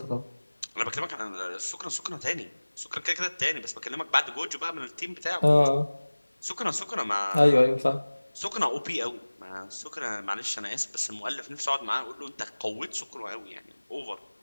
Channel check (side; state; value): both; inverted; correlation -1.00